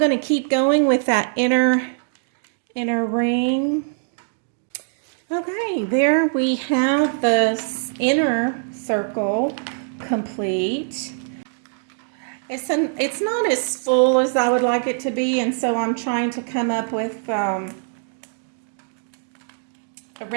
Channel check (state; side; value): silent; left; digital silence